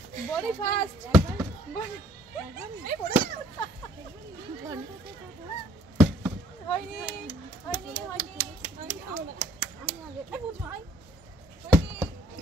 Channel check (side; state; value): both; normal; correlation 0.60